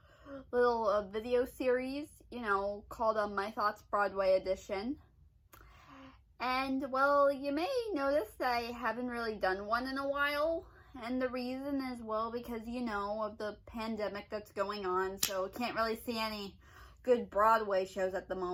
video series, called My Thoughts Broadway Edition. And well, you may notice that I haven't really done one in a while. And the reason is, well, because of the pandemic that's going on, so I can't really see any good Broadway shows at the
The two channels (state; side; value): identical; both; correlation 1.00